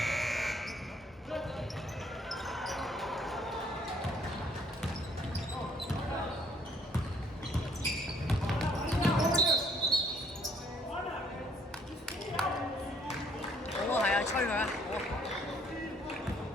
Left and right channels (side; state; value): both; normal; correlation 0.64